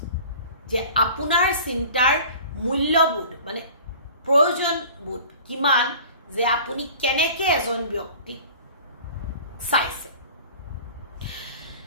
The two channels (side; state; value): both; inverted; correlation -0.44